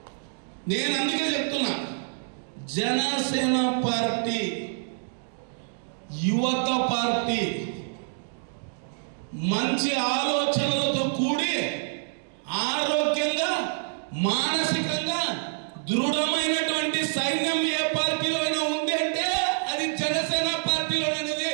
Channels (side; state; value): left; silent; digital silence